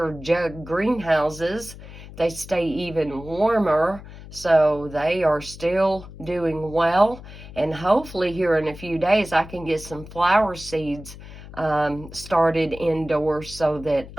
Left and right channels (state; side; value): noise; left; hum, 15 dB below the sound